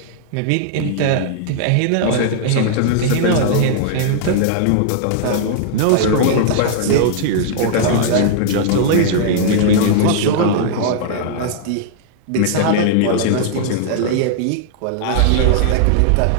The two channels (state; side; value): different; both; correlation -0.01